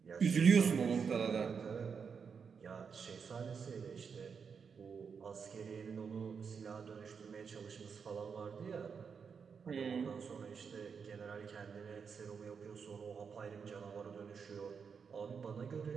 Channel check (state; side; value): quieter; left; 6.1 dB